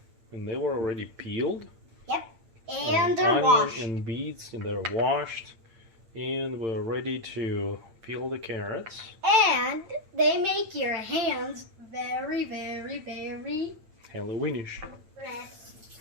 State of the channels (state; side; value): late; left; 8.9 ms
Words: And they were already peeled. Yep. And they're washed. Onion and beets, and they're washed. And we're ready to peel the carrots. And they make your hands very, very, very Halloweenish. red.